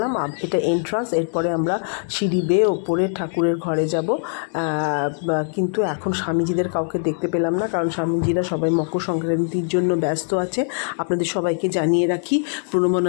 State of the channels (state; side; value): silent; right; digital silence